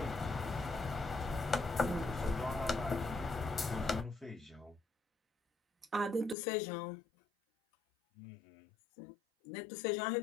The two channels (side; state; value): right; drops out; at 6.4 s